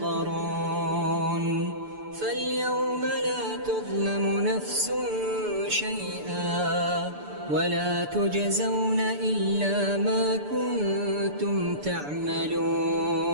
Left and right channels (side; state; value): left; late; 6.9 ms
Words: فاليوم لا تظلم نفس شيئا ولا تجزون إلا ما كنتم تعملون